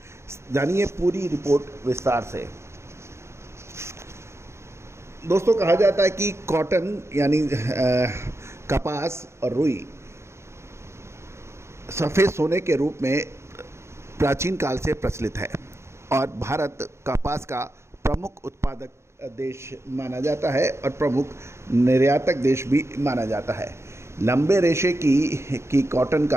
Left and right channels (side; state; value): left; late; 0.13 ms